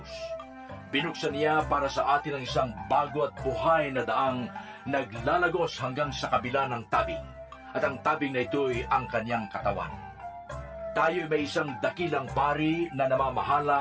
Binuksan niya para sa atin ang isang bago at buhay na daang naglalagos hanggang sa kabila ng tabing, at ang tabing na ito'y ang kanyang katawan. Tayo'y may isang dakilang pari na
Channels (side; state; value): both; identical; correlation 1.00